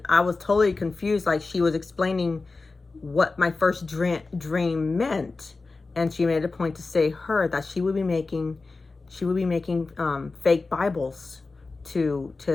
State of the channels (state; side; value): quieter; right; 3.8 dB